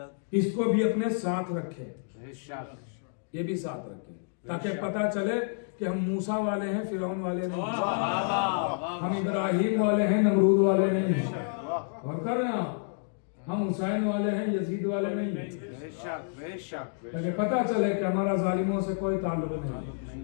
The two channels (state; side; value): silent; right; digital silence